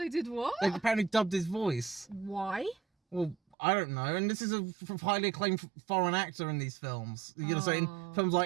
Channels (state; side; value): drops out; left; at 3.6 s